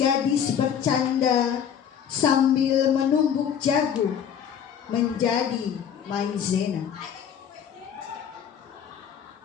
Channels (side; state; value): right; quieter; 8.3 dB